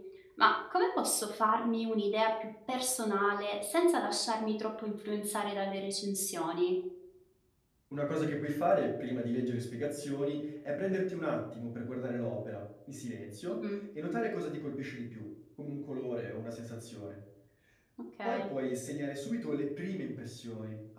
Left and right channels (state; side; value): identical; both; correlation 1.00